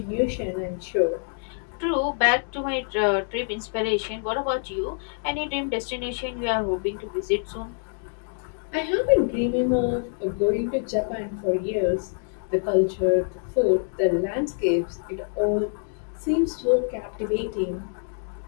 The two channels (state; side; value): silent; right; digital silence